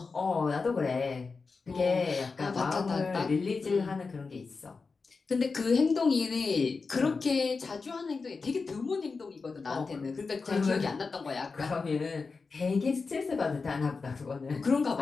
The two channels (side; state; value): right; quieter; 4.5 dB